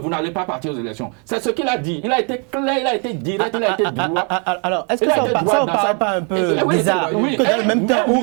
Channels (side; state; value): left; quieter; 37.1 dB